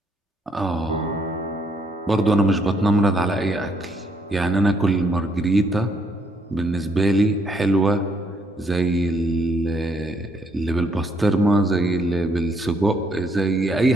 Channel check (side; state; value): both; normal; correlation 0.69